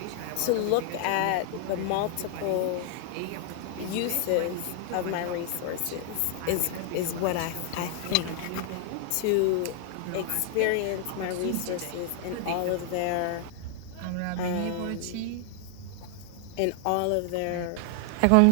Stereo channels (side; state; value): both; different; correlation 0.00